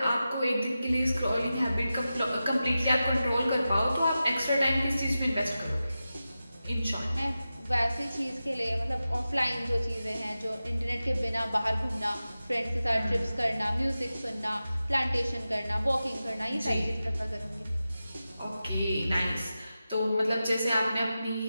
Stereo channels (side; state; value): both; inverted; correlation -0.93